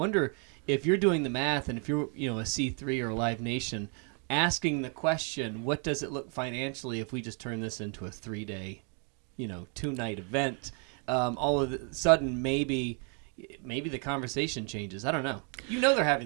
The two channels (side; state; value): left; quieter; 38.8 dB